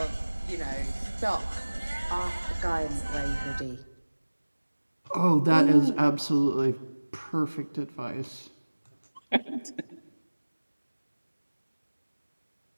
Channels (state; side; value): inverted; both; correlation -1.00